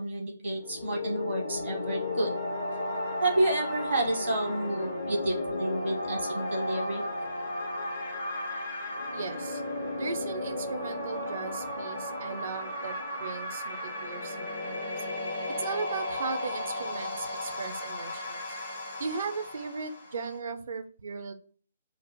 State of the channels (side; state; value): both; inverted; correlation -0.76